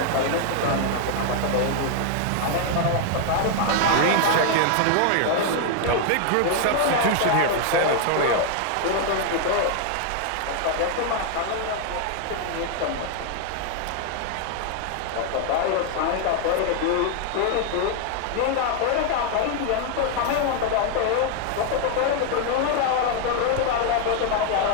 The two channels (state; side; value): different; both; correlation 0.00